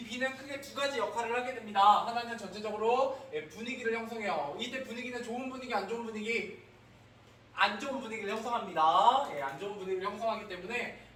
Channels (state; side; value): identical; both; correlation 1.00